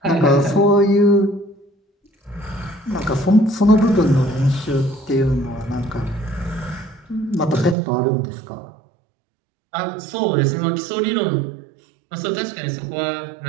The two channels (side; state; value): left; drops out; at 7.8 s